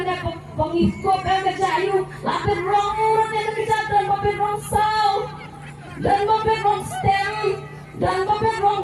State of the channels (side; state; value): both; identical; correlation 1.00